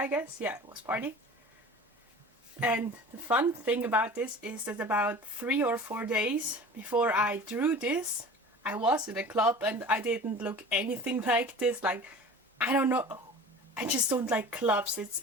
guess. Yeah, it was party. And the fun thing about this is that about 3 or 4 days before I drew this, I was in a club and I didn't look anything like this. Like, I don't know, I just don't like clubs.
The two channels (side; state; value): both; normal; correlation 0.40